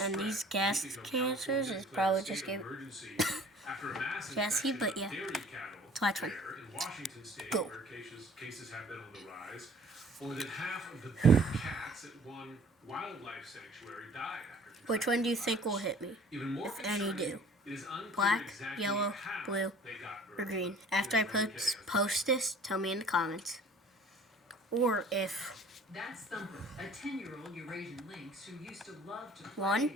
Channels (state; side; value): normal; both; correlation 0.51